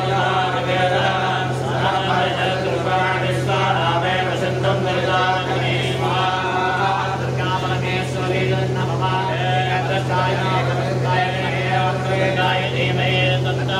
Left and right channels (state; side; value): identical; both; correlation 1.00